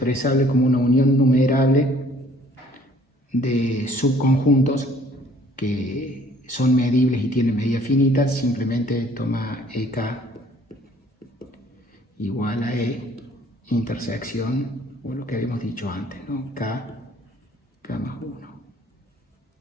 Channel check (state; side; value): normal; both; correlation 0.57